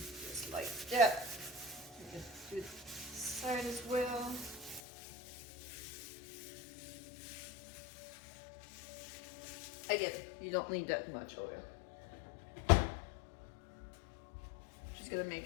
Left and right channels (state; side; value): drops out; right; at 4.8 s